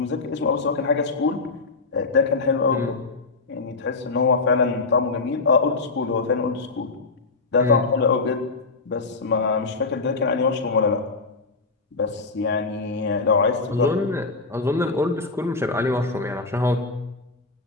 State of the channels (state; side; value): quieter; right; 3.9 dB